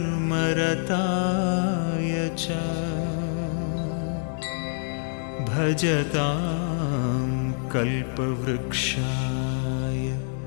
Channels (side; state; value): right; silent; 61 dB below the other